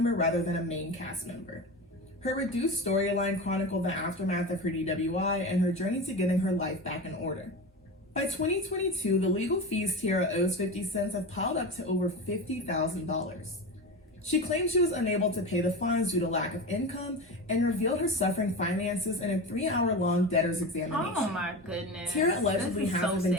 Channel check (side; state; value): both; normal; correlation 0.26